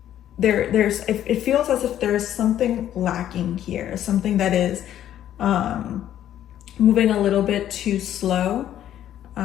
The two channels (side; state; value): right; quieter; 11.4 dB